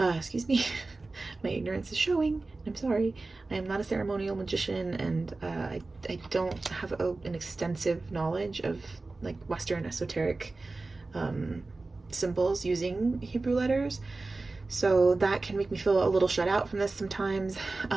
me, my ignorance is showing. I'm sorry. I am not a ceremonial magician, and I don't have an extensive knowledge of like Western esoteric symbols using Hebrew letters. So that can make me feel a little shut out from this sometimes.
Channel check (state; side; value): quieter; left; 3.4 dB